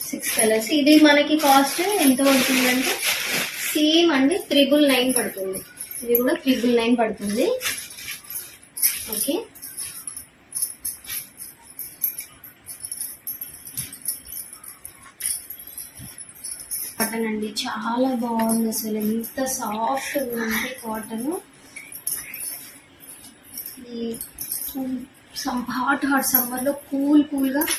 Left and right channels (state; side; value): identical; both; correlation 1.00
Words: 6 కలర్స్. ఇది మనకి కాస్ట్ ఎంత పడుతుందంటే సేమ్ అండి 999 పడుతుంది. ఇది కూడా 999 పడుతుంది. ఓకే, కాటన్ అండి, చాలా బాగుంది అసలు. ఎంత సాఫ్ట్ ఉందంటే కాటన్. ఈ హాట్ సమ్మర్లో కూల్గా